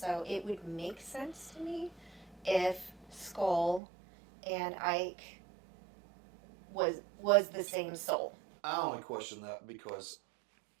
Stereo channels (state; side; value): drops out; left; at 3.8 s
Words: it would make sense to me if Skull and Ike was the same soul. I only question that because